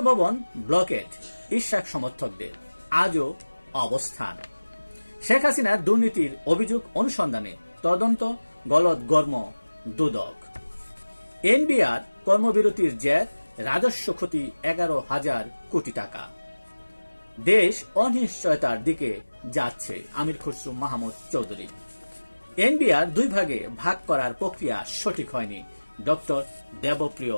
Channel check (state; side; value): inverted; both; correlation -1.00